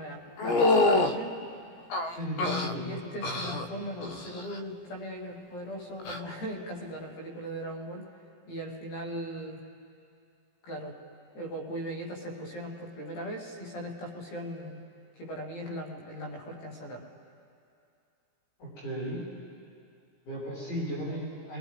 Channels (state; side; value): late; right; 17 ms